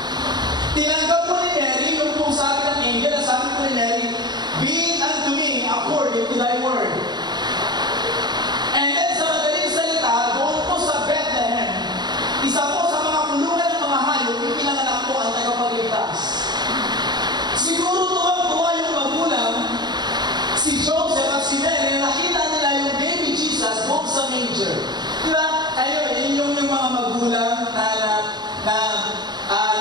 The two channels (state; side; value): late; left; 0.20 ms